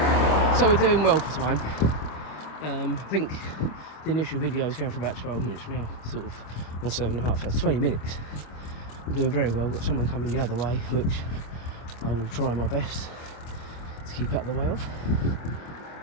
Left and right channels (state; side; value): late; right; 25 ms